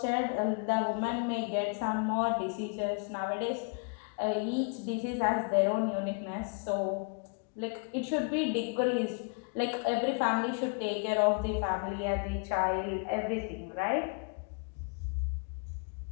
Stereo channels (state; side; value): quieter; right; 35.4 dB